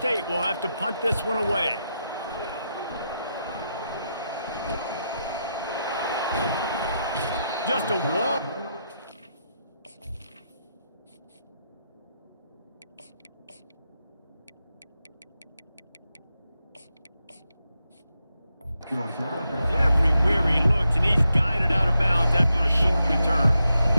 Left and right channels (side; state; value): both; inverted; correlation -0.85